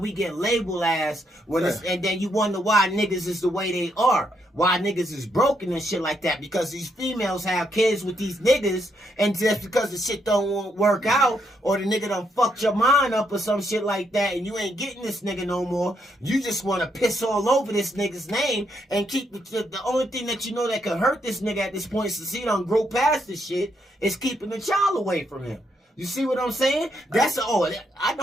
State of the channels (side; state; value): both; normal; correlation 0.76